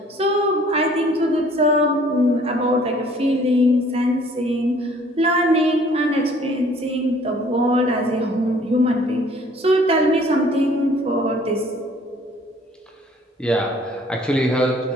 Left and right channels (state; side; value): normal; both; correlation 0.56